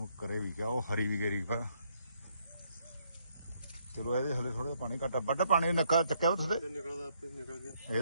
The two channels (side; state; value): both; inverted; correlation -0.72